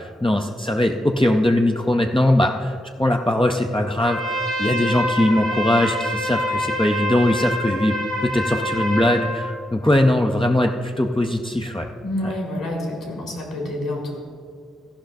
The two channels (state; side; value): normal; both; correlation 0.85